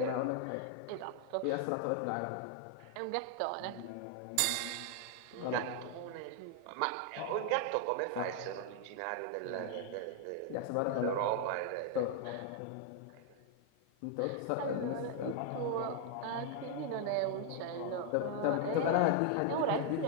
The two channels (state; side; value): different; both; correlation 0.00